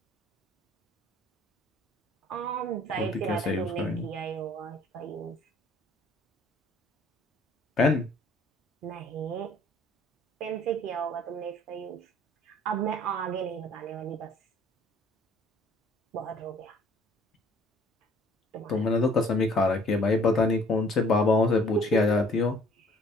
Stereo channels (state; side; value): normal; both; correlation 0.57